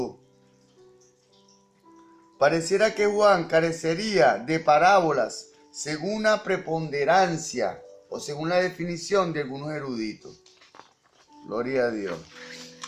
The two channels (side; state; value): both; identical; correlation 1.00